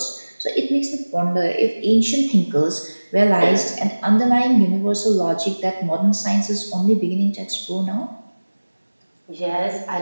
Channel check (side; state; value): both; inverted; correlation -1.00